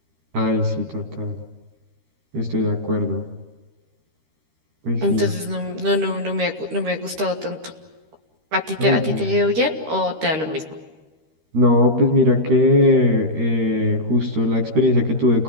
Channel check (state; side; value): late; left; 13 ms